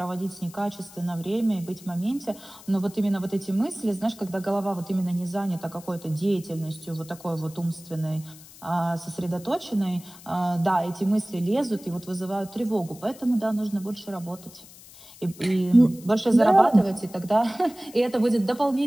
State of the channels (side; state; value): left; noise; hiss, 20 dB below the sound